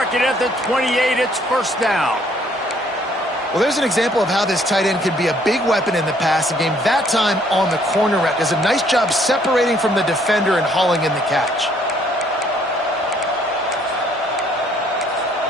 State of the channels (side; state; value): both; normal; correlation 0.64